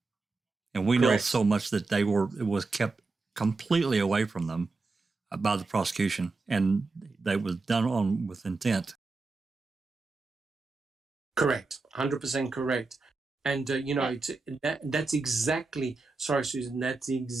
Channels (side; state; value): left; quieter; 3.8 dB